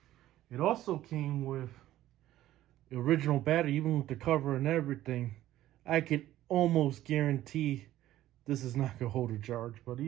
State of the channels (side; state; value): left; quieter; 14.1 dB